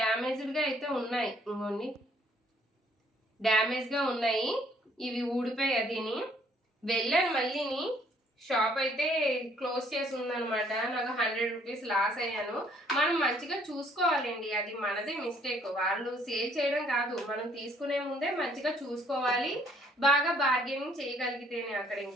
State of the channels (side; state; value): both; normal; correlation 0.63